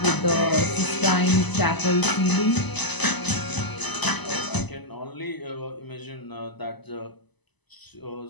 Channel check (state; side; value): late; right; 1.0 ms